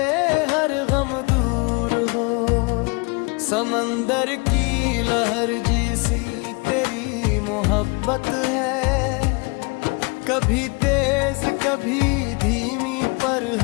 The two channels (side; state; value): right; quieter; 30.7 dB